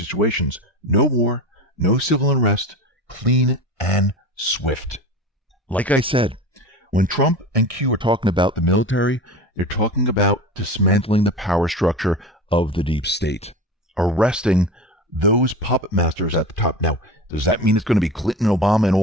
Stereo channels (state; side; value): normal; both; correlation 0.30